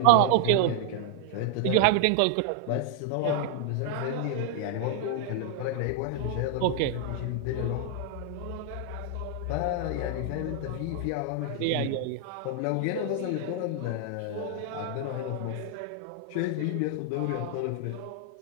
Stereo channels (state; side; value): different; both; correlation 0.00